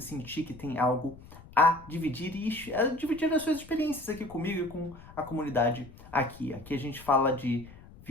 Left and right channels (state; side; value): noise; left; rumble, 19 dB below the sound